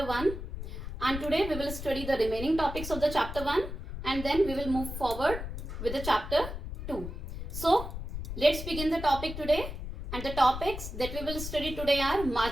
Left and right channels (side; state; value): left; noise; rumble, 7 dB below the sound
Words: 1 and today we will study the remaining topics of the chapter 1 and then we will move forward with the chapter 2. So let's begin the topic today, and the topics that we will study today are